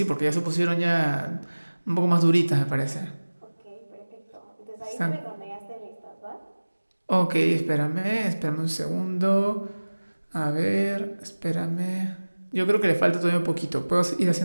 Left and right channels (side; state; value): both; inverted; correlation -1.00